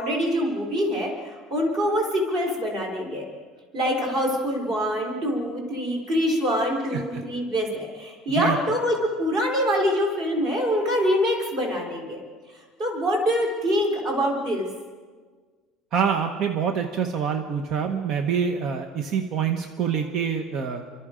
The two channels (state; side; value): normal; both; correlation 0.50